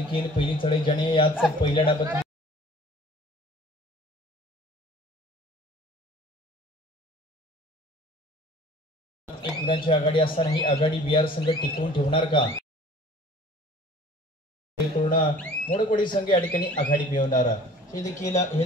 पहिली चढाई ज्याने याच पहिल्या डाबात एक गुणांची आघाडी असताना ही आघाडी बिहार संघ टिकवून ठेवणार का? पूर्ण मोडपडी संघ या ठिकाणी आघाडी मिळवणार हे देखील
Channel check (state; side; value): normal; both; correlation 0.49